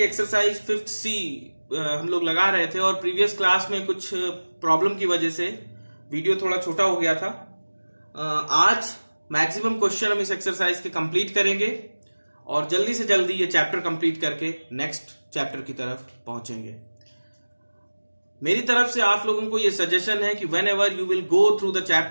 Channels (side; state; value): both; inverted; correlation -1.00